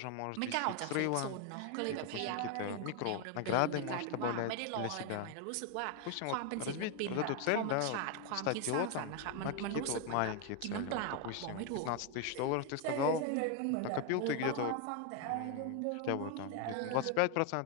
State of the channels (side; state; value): both; different; correlation 0.01